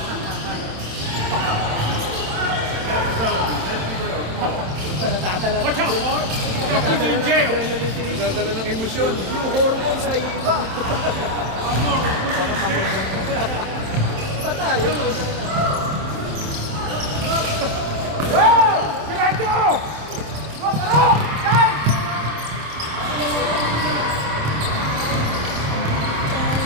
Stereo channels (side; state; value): left; late; 27 ms